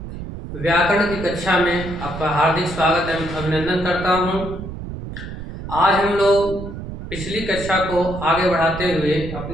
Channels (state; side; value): noise; right; rumble, 9 dB below the sound